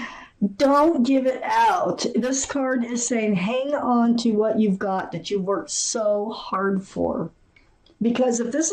don't give it out. This card is saying hang on to what you've got that you worked so hard for. Because if this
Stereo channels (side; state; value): both; identical; correlation 1.00